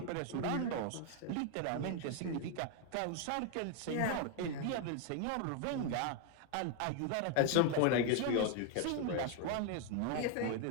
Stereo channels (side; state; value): both; different; correlation 0.00